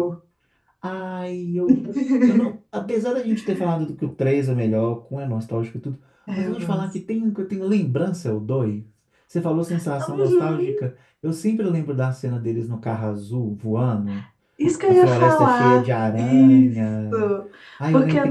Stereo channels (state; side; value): identical; both; correlation 1.00